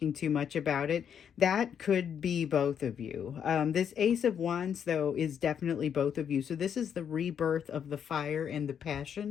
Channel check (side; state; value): right; quieter; 8.2 dB